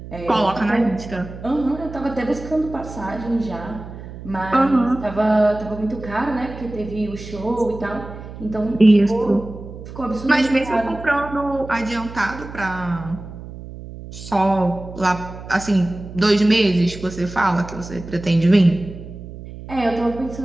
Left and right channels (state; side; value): noise; right; hum, 13 dB below the sound